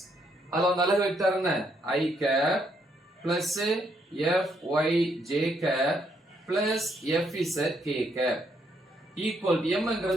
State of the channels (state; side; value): normal; both; correlation 0.74